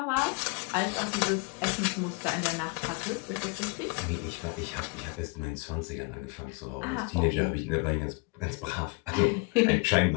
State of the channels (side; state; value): right; quieter; 30.5 dB